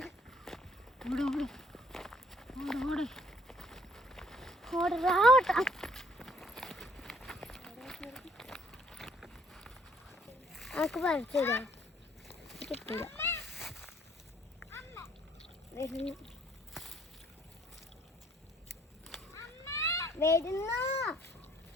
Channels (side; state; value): both; normal; correlation 0.63